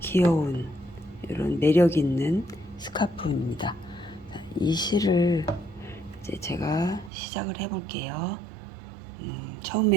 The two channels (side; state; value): left; drops out; at 7.1 s